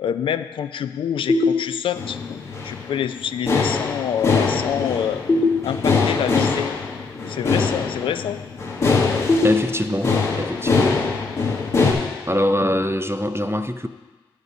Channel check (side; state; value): right; quieter; 3.9 dB